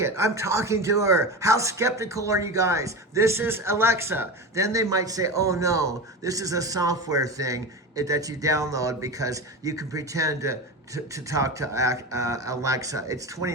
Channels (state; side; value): normal; both; correlation 0.24